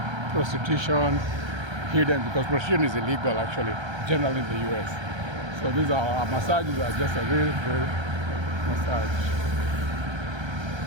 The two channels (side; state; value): left; late; 1.3 ms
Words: prostitution hidden, because prostitution is illegal actually, generally in the US. So these are massages are just a real massage.